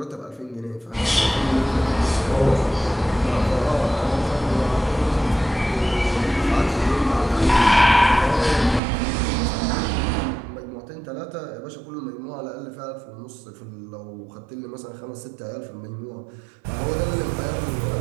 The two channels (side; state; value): left; drops out; at 8.8 s